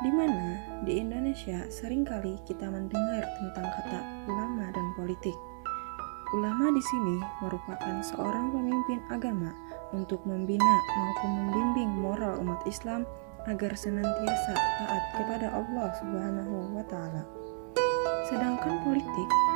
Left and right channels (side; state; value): left; silent; 56 dB below the other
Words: di mana di Indonesia seringkali kita mendengar tentang kata ulama dan politik. Ulama di sini merupakan seorang pemimpin agama untuk membina maupun membimbing moral umat Islam agar senantiasa taat kepada Allah Subhanahu wa Ta'ala. Sedangkan politik